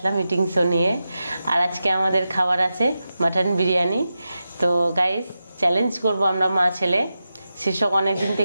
মিটিং শো নিয়ে। আর আজকে আমাদের খাবার আছে মাটন বিরিয়ানি। তো গাইস, চ্যালেঞ্জ করব আমরা মা ছেলে। শীর্ষক অনেক দিন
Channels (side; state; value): both; inverted; correlation -0.91